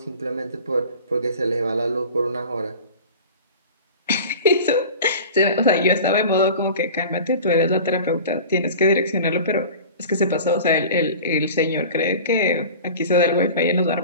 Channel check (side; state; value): both; inverted; correlation -0.38